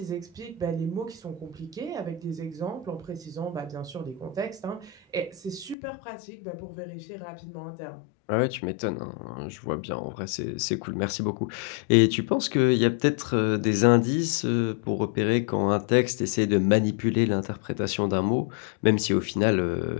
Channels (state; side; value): drops out; right; at 5.8 s